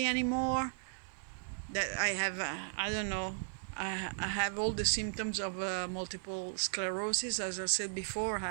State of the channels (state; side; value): silent; left; 54 dB below the other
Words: anymore, that I have, I don't know, I have all the symptoms of multiple sclerosis. As I said before,